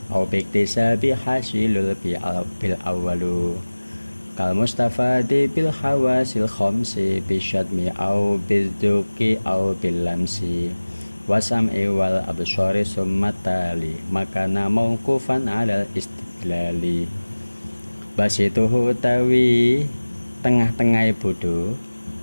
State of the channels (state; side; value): inverted; both; correlation -1.00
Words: au biktisabi hasilul bil awwalu kal mustafadi bil hawasil khamsi bisyadmi au bidzduki au bil lamsi wasam'i wal absari summatali makana mauqufan alal istidlali. Basituhu utawi tengah-tengah bodho